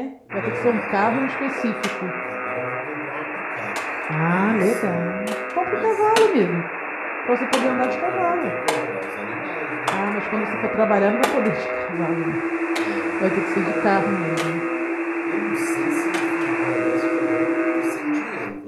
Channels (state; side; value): identical; both; correlation 1.00